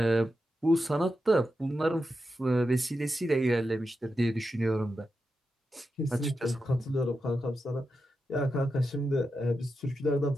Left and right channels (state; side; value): normal; both; correlation 0.88